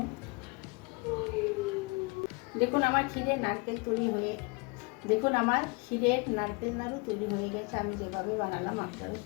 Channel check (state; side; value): quieter; right; 28.5 dB